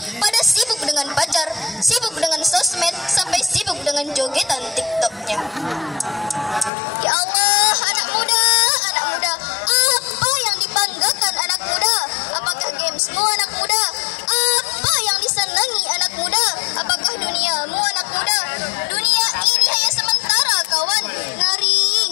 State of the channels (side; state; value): right; drops out; at 6.7 s